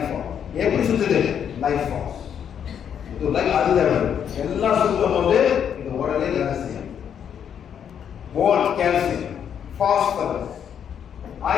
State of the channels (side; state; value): right; quieter; 8.5 dB